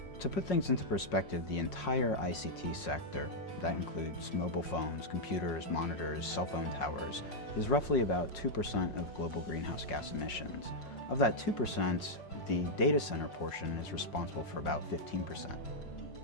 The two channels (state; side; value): late; right; 5.5 ms